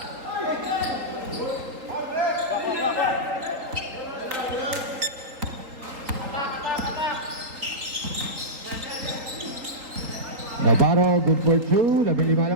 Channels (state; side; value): late; left; 3.8 ms